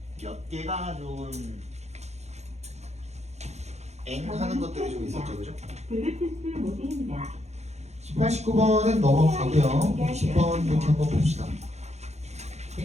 몇 개가 좀 하는 것들이 좀 있었죠, 그죠? 블루투스 모드입니다. 18, 19번은 넘어가고요. 20번 이렇게 한번 봅시다.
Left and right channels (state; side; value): late; left; 0.32 ms